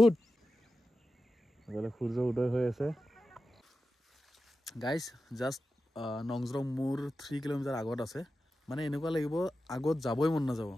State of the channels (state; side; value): normal; both; correlation 0.92